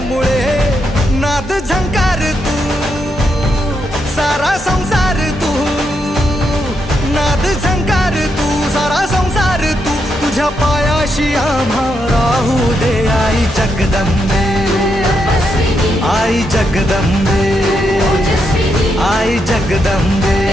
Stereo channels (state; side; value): normal; both; correlation 0.81